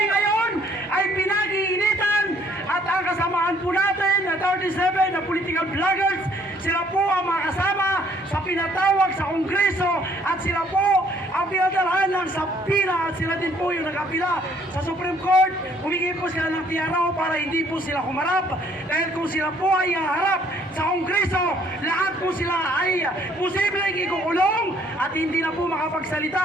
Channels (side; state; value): both; normal; correlation 0.62